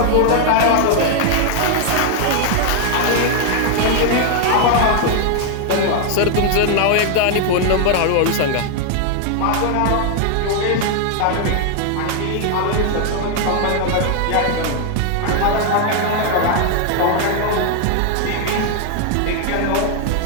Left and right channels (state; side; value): different; both; correlation 0.00